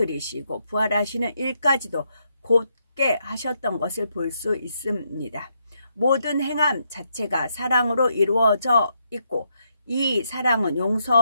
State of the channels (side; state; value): both; inverted; correlation -0.78